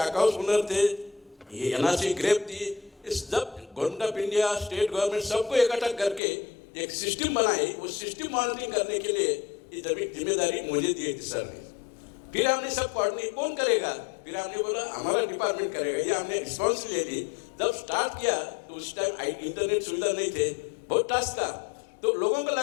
हाउस ओनर थे, ये एनआरसी ग्रेप थी, इस सब government of India, state government सबको इकट्ठा करके एक सिस्टम बनाई। उस सिस्टम मॉनिटरिंग करने के लिए ये जिम्मेदारी मुझे दी थी सर ने। फिर हमने सब कोऑर्डिनेट कौन करेगा, फिर हमने बोला हमारा डिपार्टमेंट करेगा, ये हमने रिस्पॉन्स ले ली। जब स्टार्ट किया तो उस टाइम इंटरनेट सुविधा नहीं थे, बहुत टास्क था, तो लोगों को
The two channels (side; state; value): right; drops out; at 6.2 s